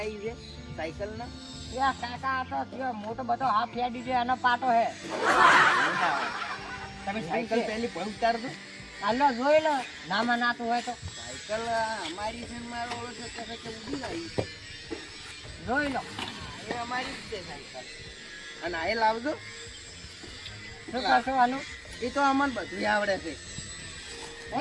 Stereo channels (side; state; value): both; identical; correlation 1.00